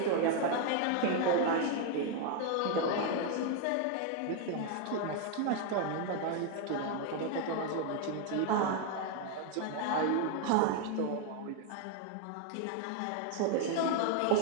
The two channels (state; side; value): different; both; correlation 0.00